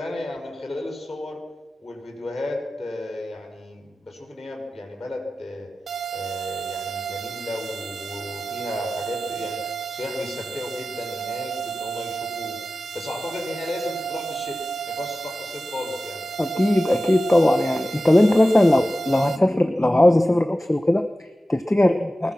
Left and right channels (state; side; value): normal; both; correlation 0.95